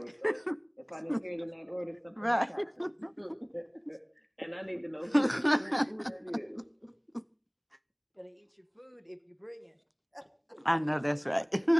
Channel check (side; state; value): both; identical; correlation 1.00